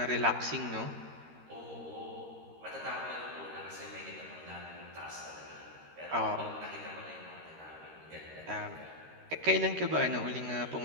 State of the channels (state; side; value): late; left; 13 ms